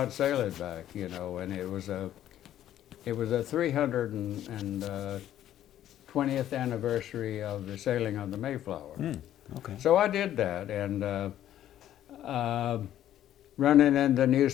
sail it back?" You know, and it was a 320th anniversary of the sailing of the Mayflower. Okay. So I did that, and running into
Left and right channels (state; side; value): quieter; right; 11.9 dB